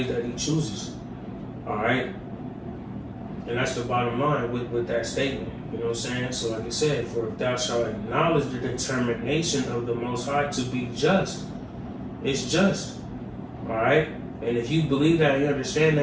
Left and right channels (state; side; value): identical; both; correlation 1.00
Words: that He chooses. All right? And that's the bottom line with that statement. You know what I'm saying? So like I said, for if thou shalt acknowledge the determination of the Most High to be just, it's just. Alright? And if you believe that, you understand